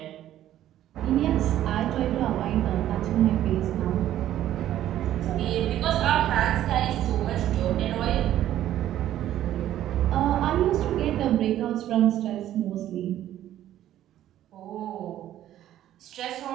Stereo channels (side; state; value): left; quieter; 12.4 dB